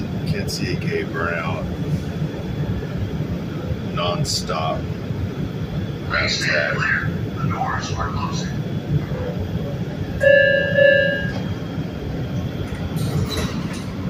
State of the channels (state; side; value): identical; both; correlation 1.00